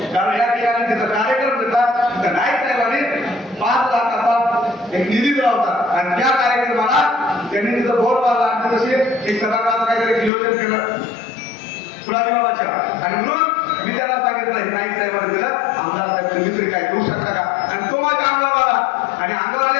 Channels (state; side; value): drops out; right; at 10.3 s